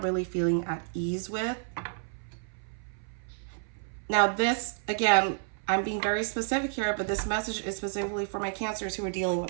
really feeling at ease with. Now this, again, I'm being very specific here, but this message is specifically for my Cancers who are dealing with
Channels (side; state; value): left; silent; 58 dB below the other